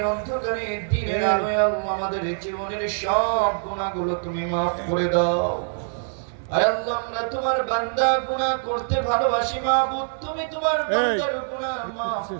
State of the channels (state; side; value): silent; left; 62 dB below the other